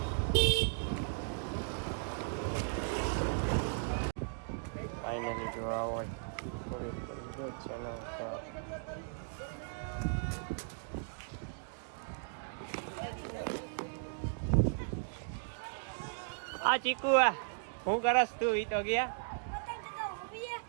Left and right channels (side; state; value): left; silent; digital silence